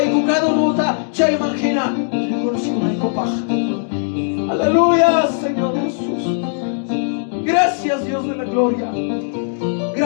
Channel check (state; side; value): silent; right; digital silence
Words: chaimangina. Aleluya, Señor Jesús. Gracias, Dios de la gloria.